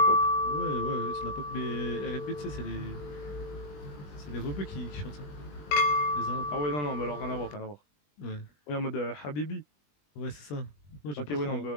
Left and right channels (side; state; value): right; late; 20 ms